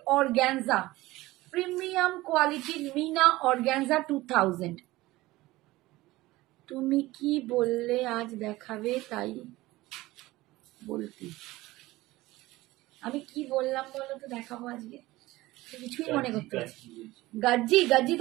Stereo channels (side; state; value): left; quieter; 18.6 dB